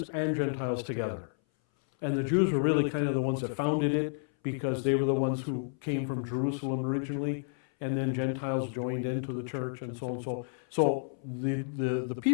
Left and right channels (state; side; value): silent; right; 57 dB below the other